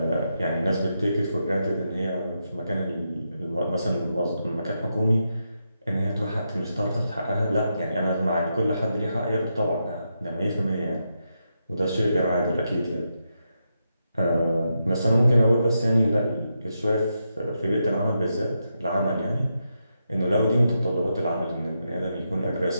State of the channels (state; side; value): inverted; both; correlation -0.84